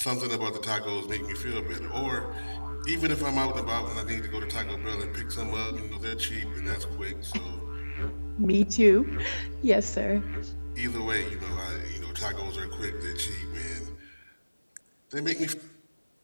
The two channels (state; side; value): inverted; both; correlation -1.00